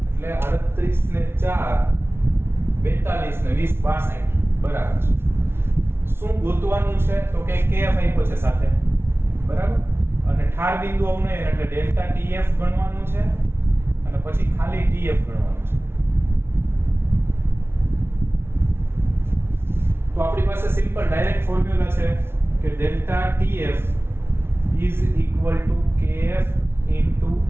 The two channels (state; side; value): late; left; 0.12 ms